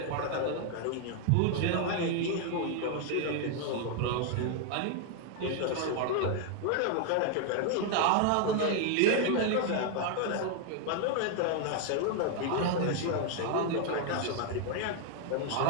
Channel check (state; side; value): different; both; correlation 0.00